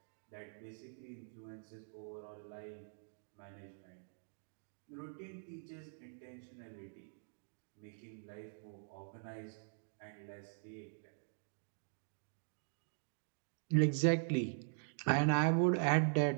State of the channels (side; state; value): left; silent; digital silence